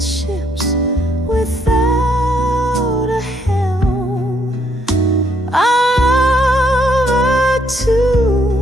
ships without a helm, our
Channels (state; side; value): normal; both; correlation 0.71